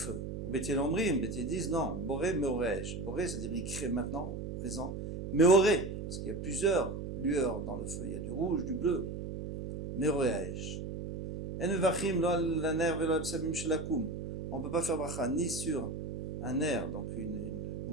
Ou Bet Hillel Omrim, Bet Hillel disent non, Boré Meoresh. Boré, c'est-à-dire il crée maintenant, présent. Meoré, parce qu'il y a plusieurs lueurs dans le feu, il y a du rouge, du bleu. Meoresh. En vachim lo la ner velo absamim shelakum. On ne peut pas faire bracha ni sur un ner, donc une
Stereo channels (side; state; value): right; noise; hum, 5 dB below the sound